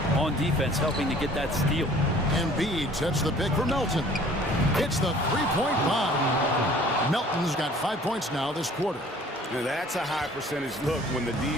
on defense, helping to get that steal. Embiid sets the pick for Melton. It's the three-point bomb. Melton's got 5 points now this quarter. Now that's a high percentage look when the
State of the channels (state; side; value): normal; both; correlation 0.52